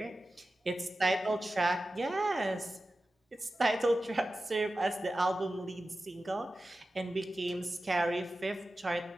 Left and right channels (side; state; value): both; normal; correlation 0.94